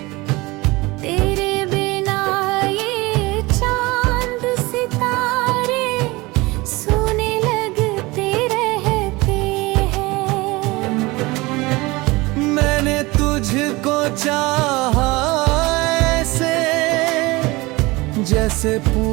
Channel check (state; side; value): quieter; left; 22.5 dB